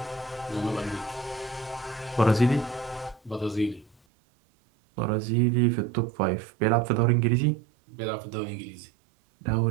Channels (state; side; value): drops out; left; at 4.0 s